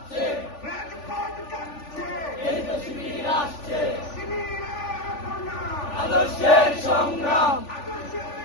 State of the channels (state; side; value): late; right; 3.4 ms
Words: রাজপথ কাঁপছে, এই যে শিবির আসছে, আদর্শের সংগ্রাম,